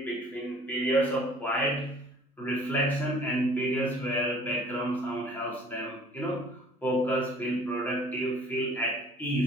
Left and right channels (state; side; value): normal; both; correlation 0.52